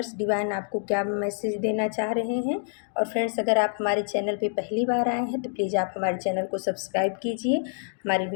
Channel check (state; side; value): silent; right; digital silence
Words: डिवाइन आपको क्या मैसेज देना चाह रहे हैं। और फ्रेंड्स, अगर आप हमारे चैनल पे पहली बार आए हैं तो प्लीज़ आप हमारे चैनल को सब्सक्राइब कीजिए, हमारी